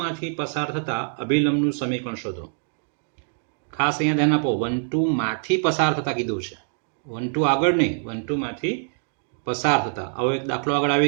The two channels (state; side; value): silent; left; digital silence